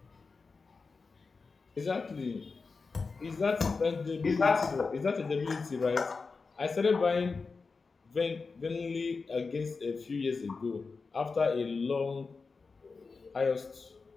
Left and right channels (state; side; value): quieter; right; 4.4 dB